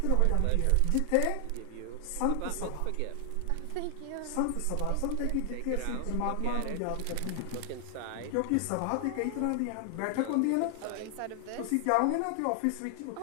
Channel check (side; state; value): both; different; correlation 0.00